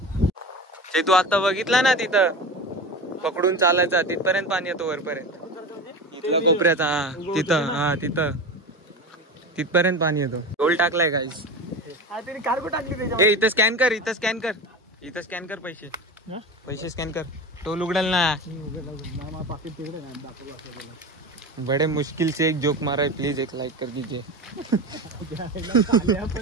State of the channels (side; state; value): both; normal; correlation 0.28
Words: ते तू आता बघितला ना तिथं पकडून चालायचा. तिथपर्यंत पाणी येतो वरपर्यंत. इथला कोपऱ्याचा. तिथपर्यंत पाणी येतो. टोल टाकलाय गाईस. कार्गो टाकली. इथं स्कॅन कर. पैसे स्कॅन कर. टोल उघडेल ना. बड़े मुश्किल से एक जोक मारा है. प्लीज एक लाइक कर दीजिए.